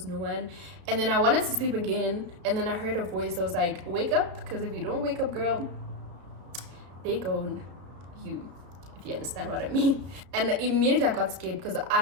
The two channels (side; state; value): left; late; 33 ms